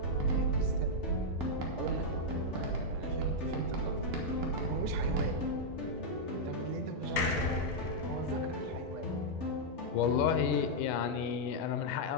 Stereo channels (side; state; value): both; normal; correlation -0.04